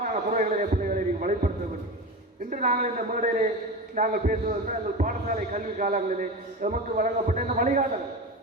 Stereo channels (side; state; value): both; normal; correlation 0.26